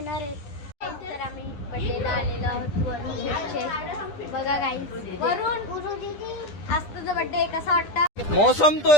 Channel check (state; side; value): late; right; 10 ms